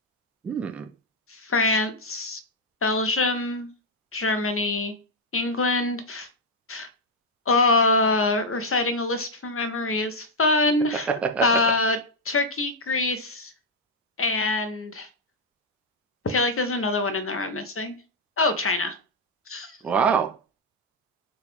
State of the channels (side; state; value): both; normal; correlation -0.01